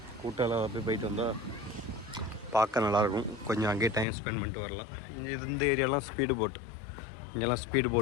கூட்டால் போயிட்டு வந்தால் பார்க்க நல்லாயிருக்கும். கொஞ்சம் அங்கேயே டைம் ஸ்பெண்ட் பண்ணிட்டு வரலாம். இங்கே இந்த ஏரியாலாம் ஸ்பீடு போட், இங்கெல்லாம் ஸ்பீடு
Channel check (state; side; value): drops out; right; at 4.0 s